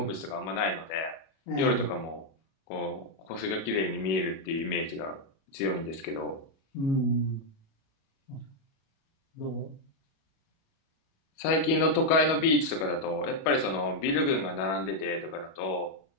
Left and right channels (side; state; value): right; late; 37 ms